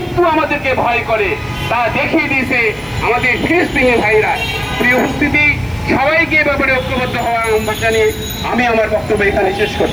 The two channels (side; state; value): right; noise; hiss, 29 dB below the sound